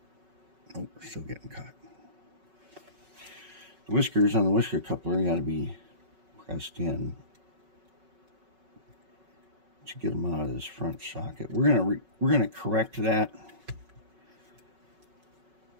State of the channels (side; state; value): left; late; 5.4 ms